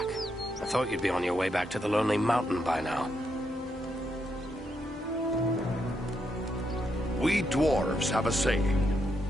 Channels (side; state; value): both; normal; correlation 0.80